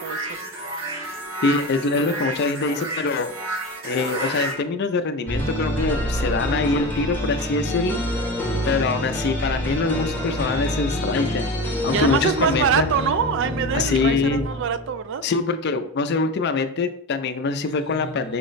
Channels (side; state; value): both; normal; correlation 0.25